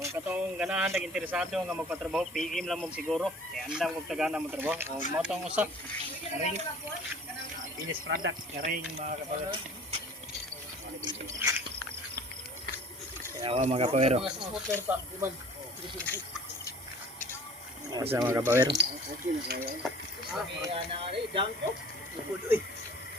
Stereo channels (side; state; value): both; normal; correlation 0.47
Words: katong ganahan nag-interesado nga magpatrabaho, PM lang mo siguro. Kaya andang kong tagana mo trabaho. O, motong usap, ring. Finished product, ring mga kapawero. Kaya mga kapawero. Asa mga kapawero.